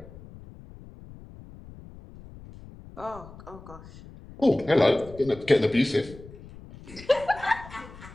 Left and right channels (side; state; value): left; noise; rumble, 18 dB below the sound